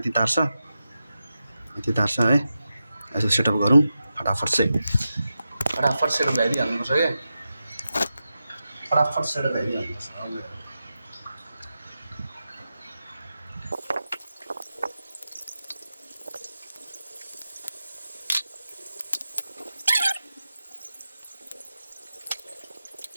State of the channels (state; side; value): inverted; both; correlation -0.91